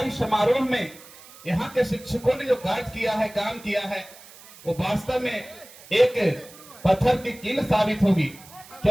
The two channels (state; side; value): noise; right; hiss, 21 dB below the sound